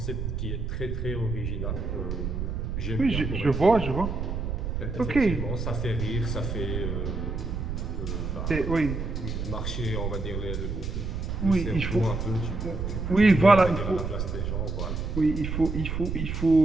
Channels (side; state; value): right; noise; rumble, 3 dB below the sound